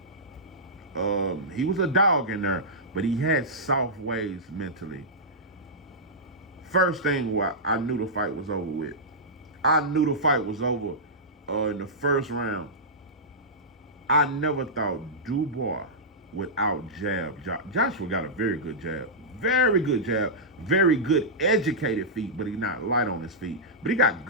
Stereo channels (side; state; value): both; normal; correlation -0.12